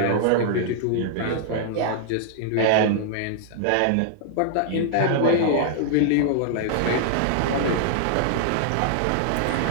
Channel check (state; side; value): different; both; correlation -0.01